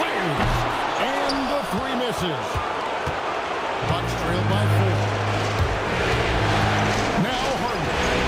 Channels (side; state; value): both; identical; correlation 1.00